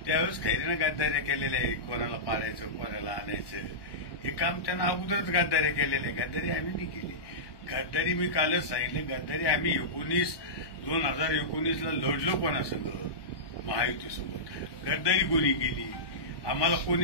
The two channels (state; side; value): late; right; 1.2 ms